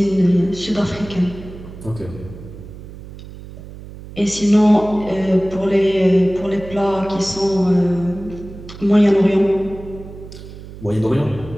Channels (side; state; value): right; noise; hum, 15 dB below the sound